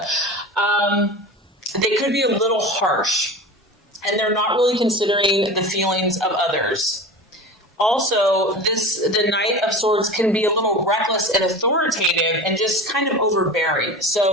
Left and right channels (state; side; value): normal; both; correlation 0.32